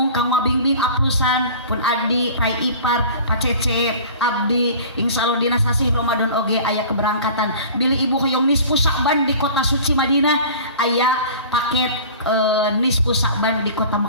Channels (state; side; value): inverted; both; correlation -0.42